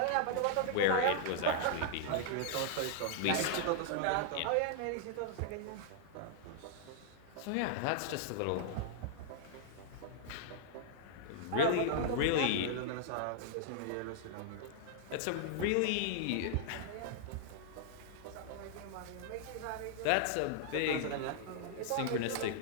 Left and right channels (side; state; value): both; different; correlation -0.01